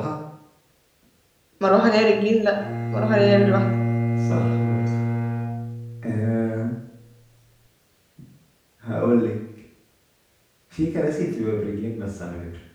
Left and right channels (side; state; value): both; identical; correlation 1.00